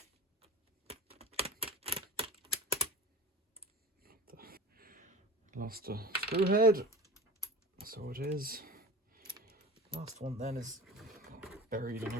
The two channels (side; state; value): both; normal; correlation 0.37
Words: Lost a screw head, so it is. Last one then is buried in